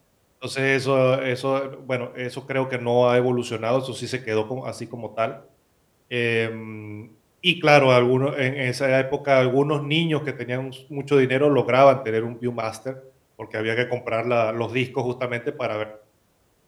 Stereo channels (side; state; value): both; identical; correlation 1.00